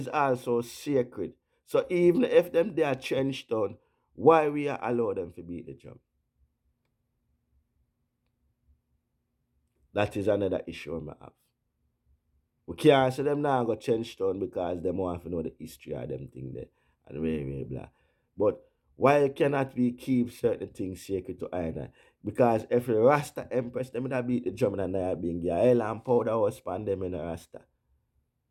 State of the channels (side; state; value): both; identical; correlation 1.00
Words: also sacred. So even if them they are trenched down, why we are allow them to beat the drum? That is another issue I have. We can't say them now go trench down because them want to know the history of them thing there and very blah. But why cannot we keep certain things sacred to either? Because if the Rasta Empress, them would beat the drum and they being a hell and powder was span them in the Rasta.